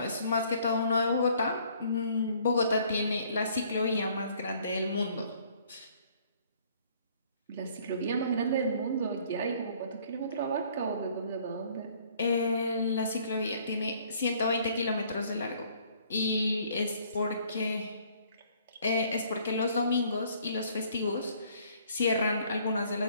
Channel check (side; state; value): both; inverted; correlation -0.60